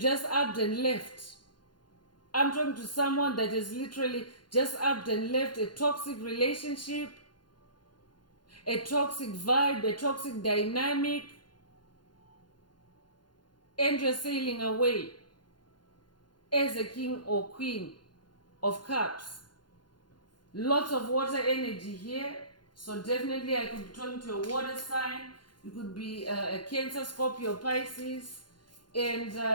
upped and left. I'm talking to someone that has literally just upped and left a toxic relationship, a toxic vibe, a toxic dynamic, and you're sailing away as a king or queen of cups. Lots of water energy here. So definitely I could be talking to a water sign. You could be a Cancer, Scorpio, Pisces. And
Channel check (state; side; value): late; right; 0.71 ms